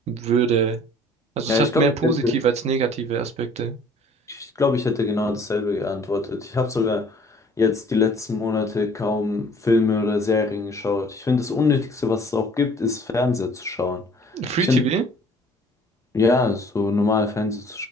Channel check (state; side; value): normal; both; correlation 0.54